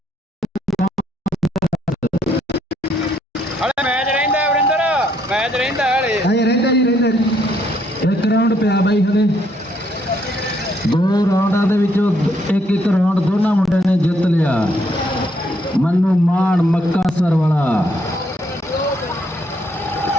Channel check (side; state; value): both; normal; correlation 0.71